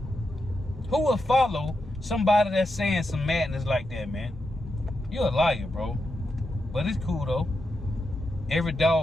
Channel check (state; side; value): normal; both; correlation 0.86